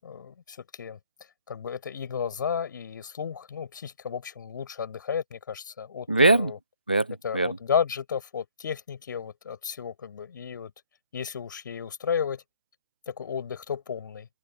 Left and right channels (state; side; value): inverted; both; correlation -0.61